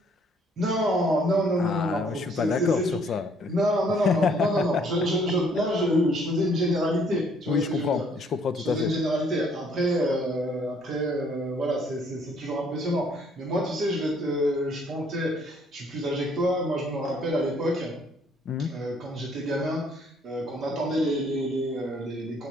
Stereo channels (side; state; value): both; normal; correlation 0.63